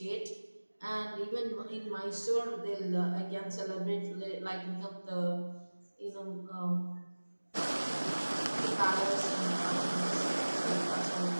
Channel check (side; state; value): both; inverted; correlation -1.00